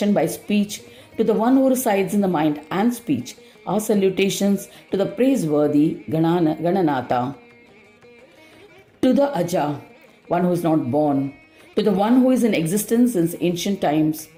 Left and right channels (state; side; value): identical; both; correlation 1.00